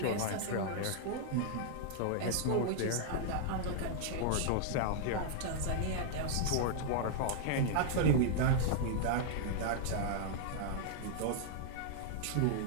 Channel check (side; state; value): both; different; correlation -0.01